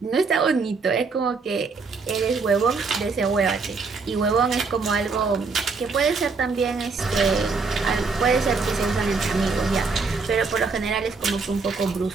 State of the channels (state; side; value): quieter; left; 4.5 dB